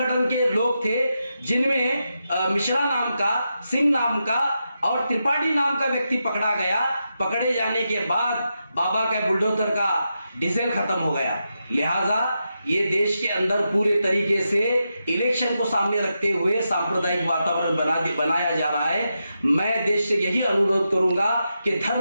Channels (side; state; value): both; inverted; correlation -0.87